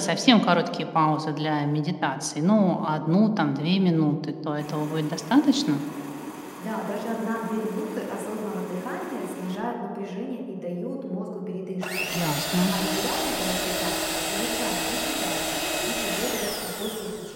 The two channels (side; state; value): both; identical; correlation 1.00